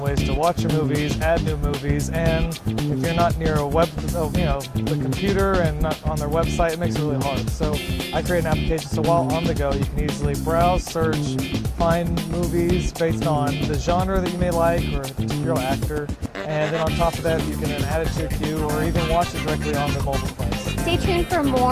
ways to watch your movies, add new movies, and if you're not near the computer and not on their website, it makes it really hard. So I create an application so while on the go, you can easily browse, search, find movies based on the genre that you may like or a particular actor, and then on top of that, you can then add it to your queue or even watch it directly on the mobile device. Stay tuned for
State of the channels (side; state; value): both; identical; correlation 1.00